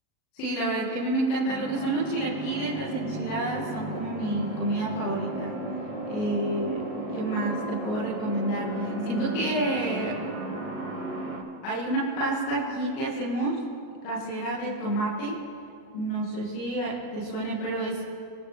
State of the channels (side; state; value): right; late; 38 ms